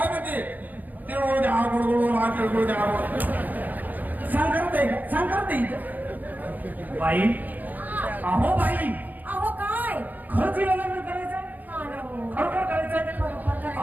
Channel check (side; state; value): left; late; 0.083 ms